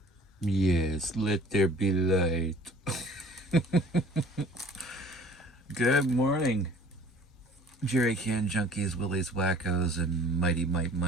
Yes, let there be light. Good morning, Jerry Can Junkies, Willies Wackos, and Mighty Mite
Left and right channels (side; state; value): both; normal; correlation 0.51